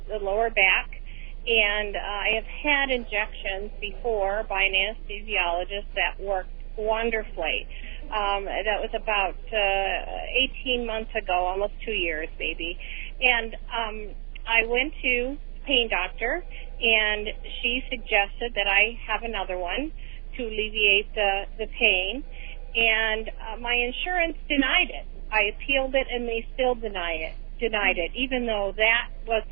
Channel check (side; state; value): left; quieter; 33.7 dB